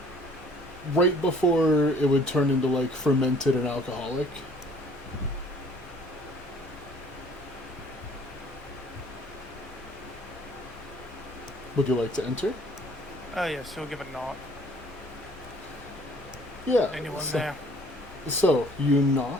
right before it would turn into like fermented and alcoholic. Would you like to enter? Oh, yes, he'll give a knock. Yeah. Anyone so, there? So, you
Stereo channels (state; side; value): normal; both; correlation 0.56